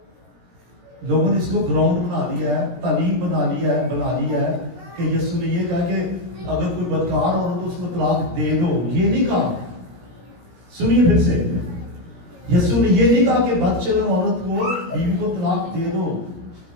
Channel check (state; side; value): late; left; 17 ms